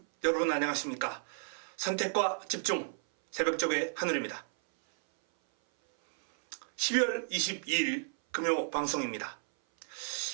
여러분 안녕하십니까? 선택과 집중 새벽적의 하늘입니다. 12월 22일 금요 방송입니다.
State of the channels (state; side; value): silent; left; 56 dB below the other